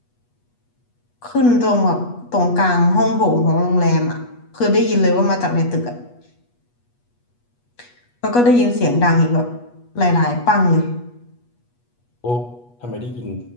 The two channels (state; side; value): late; right; 8.3 ms